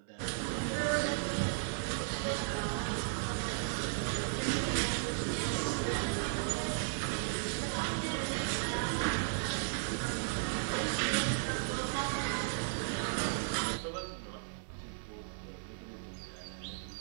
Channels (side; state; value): left; silent; 54 dB below the other